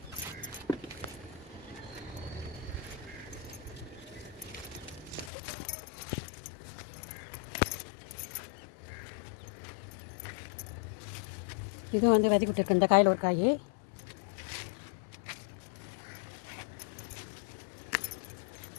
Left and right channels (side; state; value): right; drops out; at 5.3 s